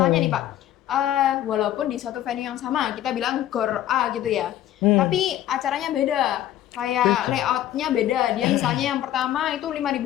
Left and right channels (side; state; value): right; quieter; 12.5 dB